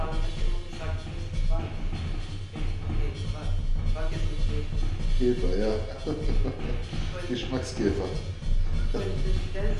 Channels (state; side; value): identical; both; correlation 1.00